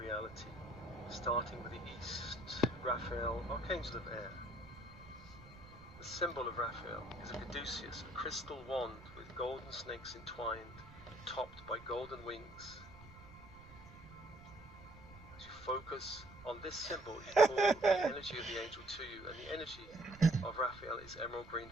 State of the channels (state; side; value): noise; right; rumble, 19 dB below the sound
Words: starting with the east, Raphael, Archangel of Air. The symbol of Raphael is a caduceus, a crystal wand with golden snakes entwined, topped by golden wings. As you focus on this symbol, you call the energy of the angel to you, and the energy of Raphael is emerald green